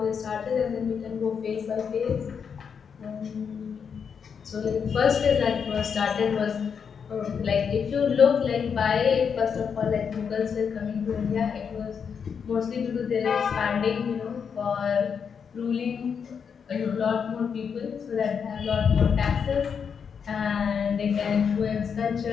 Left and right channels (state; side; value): quieter; right; 6.7 dB